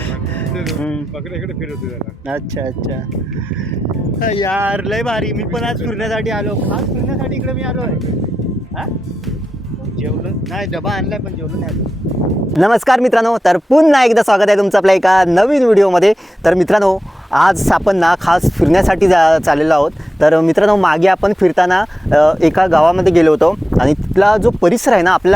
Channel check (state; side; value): normal; both; correlation 0.90